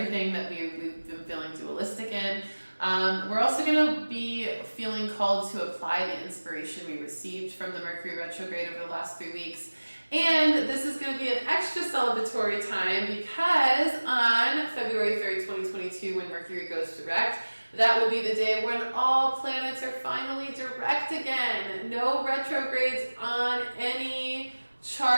that we've been feeling dualistic in. We're also going to be feeling called to apply the inspiration we received from the Mercury retrograde over the last 3 weeks. And this is going to be an extra celebratory time, because on February 3rd, 2022, when Mercury goes direct, that will be the day when all planets are finally direct again. No retrogrades on any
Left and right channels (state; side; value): inverted; both; correlation -1.00